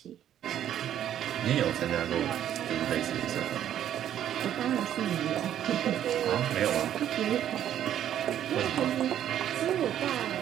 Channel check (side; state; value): left; quieter; 10.7 dB